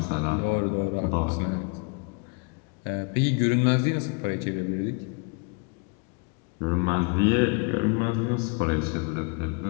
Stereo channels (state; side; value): quieter; right; 33.1 dB